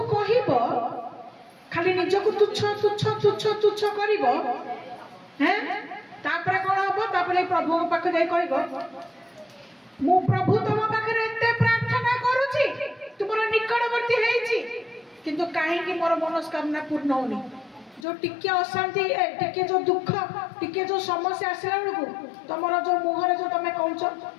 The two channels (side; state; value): right; drops out; at 18.1 s